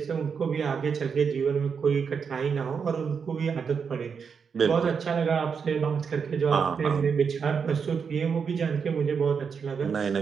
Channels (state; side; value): quieter; left; 6.2 dB